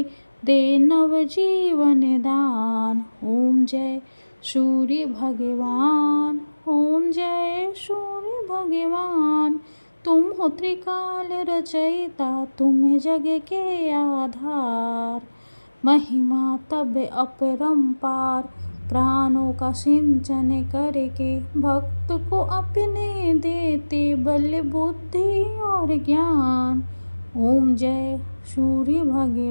दे नव जीवन दान। ओम जय सूर्य भगवान ओम जय सूर्य भगवान। तुम हो त्रिकाल रचयिता तुम जग के आधार। महिमा तब अपरंपार प्राणों का सिंचन करके। भक्त को अपने देते बल बुद्धि और ज्ञान। ओम जय सूर्य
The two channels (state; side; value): inverted; both; correlation -1.00